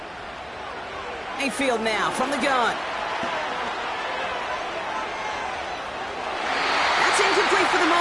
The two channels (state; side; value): identical; both; correlation 1.00